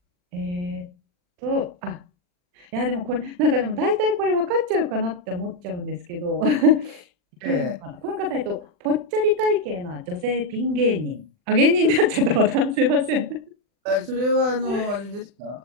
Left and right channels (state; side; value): late; left; 40 ms